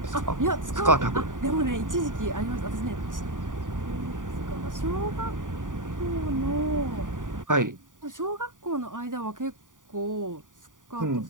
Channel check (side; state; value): left; late; 0.88 ms